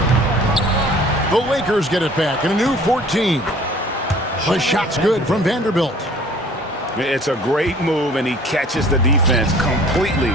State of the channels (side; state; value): both; normal; correlation 0.51